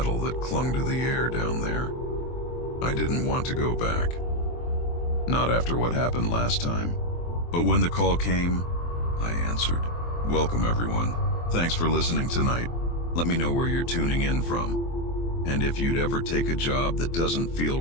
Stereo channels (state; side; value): late; right; 23 ms